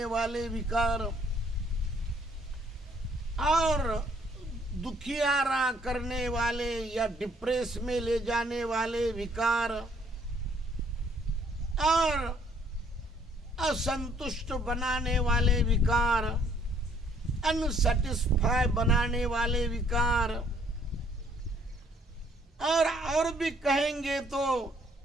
वाले विकार और दुखियारा करने वाले या डिप्रेस में ले जाने वाले विकार और असंतुष्ट बनाने वाले विकार, अनसेटिस्फाई बनाने वाले विकार, और भी कहेंगे तो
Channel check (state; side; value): normal; both; correlation 0.64